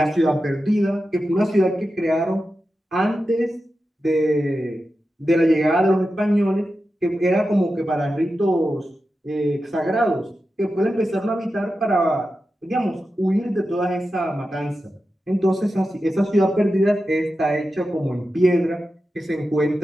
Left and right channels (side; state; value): both; normal; correlation 0.91